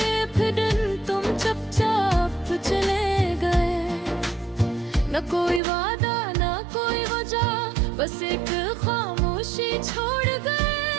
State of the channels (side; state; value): left; drops out; at 5.6 s